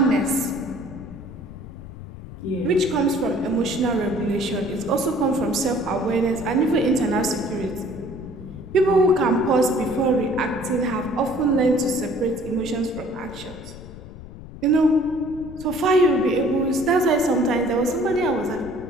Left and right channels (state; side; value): noise; left; rumble, 15 dB below the sound